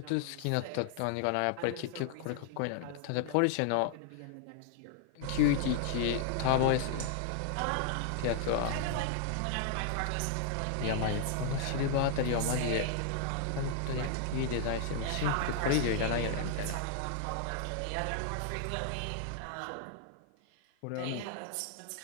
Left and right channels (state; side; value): different; both; correlation 0.00